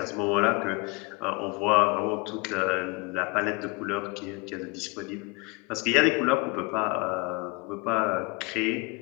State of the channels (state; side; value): quieter; right; 27.1 dB